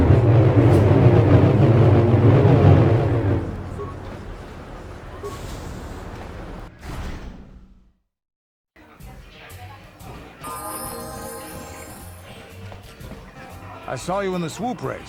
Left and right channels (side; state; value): both; identical; correlation 1.00